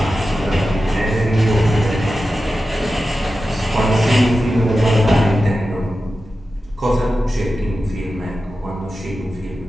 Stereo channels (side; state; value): both; normal; correlation 0.93